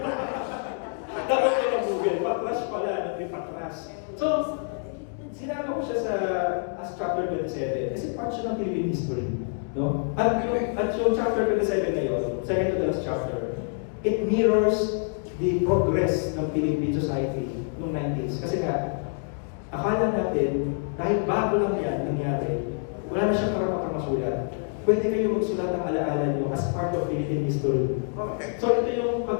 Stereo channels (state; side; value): silent; right; 60 dB below the other